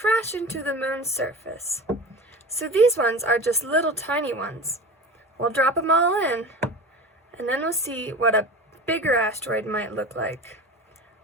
into the moon's surface. So these ones are just little tiny ones. We'll drop them all in, and then we'll see what a bigger asteroid might look like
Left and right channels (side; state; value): both; normal; correlation 0.33